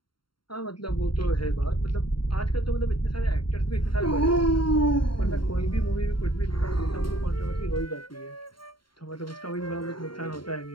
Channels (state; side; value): late; right; 0.73 ms